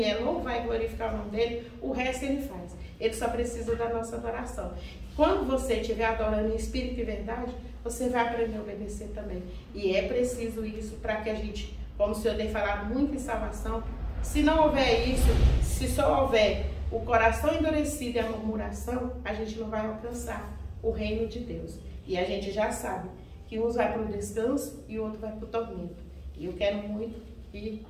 não vai glorificar o nome dEle, o resto Ele faz. Ele só precisa da nossa adoração. Quando você estiver adorando em espírito e verdade, você vai aprender a obedecer também. E é preciso isso para que a gente, como o Senhor tem falado muito em salvação, se não houver isso, se só houver o coração endurecido e a murmuração, a gente não vai alcançar o reino de Deus. E a gente já sabe que uns vai para o descanso e o outro vai para o tormento. E eu quero muito que,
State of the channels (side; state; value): both; identical; correlation 1.00